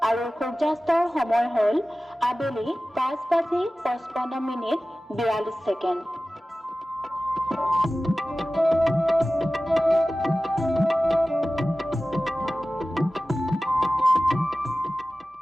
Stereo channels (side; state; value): both; normal; correlation 0.96